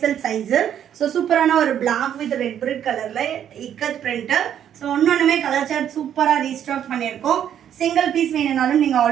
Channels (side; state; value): left; quieter; 9.8 dB